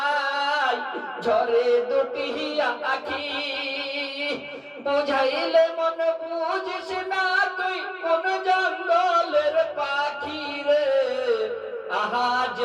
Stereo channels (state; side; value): identical; both; correlation 1.00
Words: ঝরে দুটি আখি, বুঝাইলে মন বুঝিস না তুই কোন জঙ্গলের পাখি রে। আহাজ